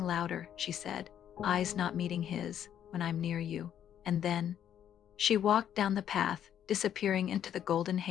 louder," she said, eyes not meeting his, "when I'm near you." And then she walked down the path, disappearing into the golden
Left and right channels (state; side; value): quieter; right; 9.9 dB